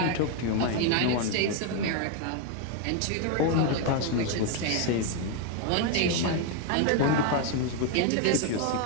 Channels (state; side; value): different; both; correlation 0.01